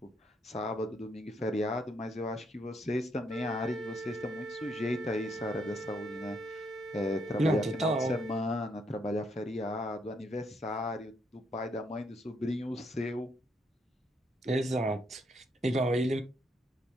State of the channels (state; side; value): normal; both; correlation 0.74